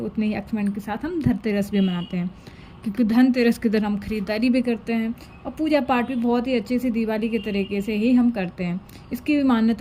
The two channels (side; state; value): both; identical; correlation 1.00